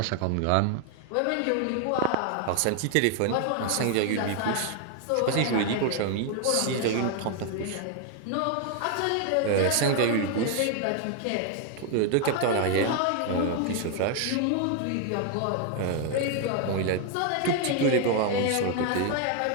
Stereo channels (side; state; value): both; different; correlation 0.00